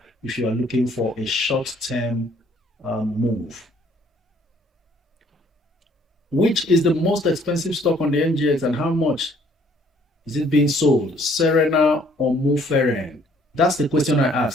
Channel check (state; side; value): normal; both; correlation 0.61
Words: if you are looking for a short-term move. Which is the most expensive stock on the NGX and how much is it being sold? Serena or Muferen? That's the question I